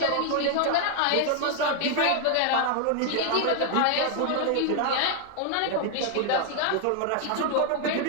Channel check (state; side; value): different; both; correlation 0.00